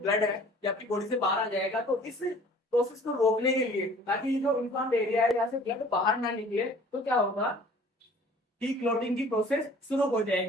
है ये आपकी बॉडी से बाहर आ जाएगा। तो इस प्रोसेस को रोकने के लिए, ताकि जो इन्फ्लेम्ड एरिया है यहाँ से ब्लड बाहर ना निकले, तो क्या होगा कि क्लॉटिंग की प्रोसेस शुरू हो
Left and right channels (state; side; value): normal; both; correlation 0.50